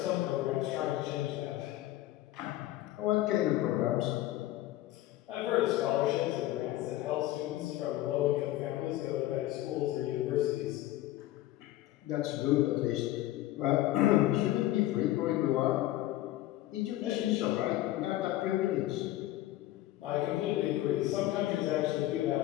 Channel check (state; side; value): quieter; right; 15.3 dB